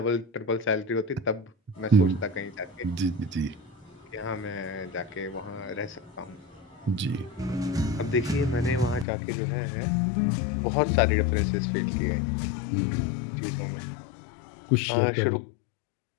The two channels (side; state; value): right; drops out; at 9.1 s